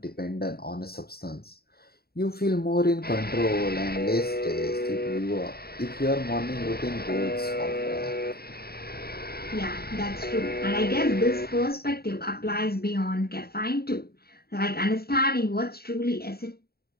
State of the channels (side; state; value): right; late; 0.45 ms